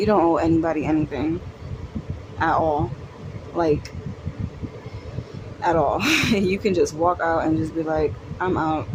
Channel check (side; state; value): both; identical; correlation 1.00